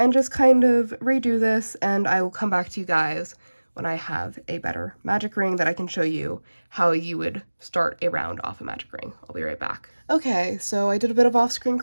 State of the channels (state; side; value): inverted; both; correlation -1.00